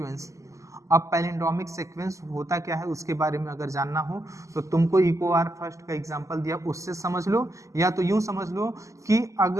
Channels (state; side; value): late; left; 0.16 ms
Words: अब पैलिंड्रोमिक सीक्वेंस होता क्या है उसके बारे में अगर जानना हो तो तुमको इको आर फर्स्ट का एग्जांपल दिया उससे समझ लो, या तो यूं समझ लो कि